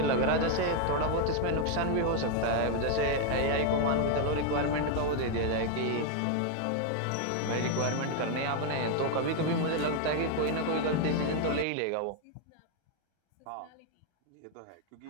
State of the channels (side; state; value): both; different; correlation 0.01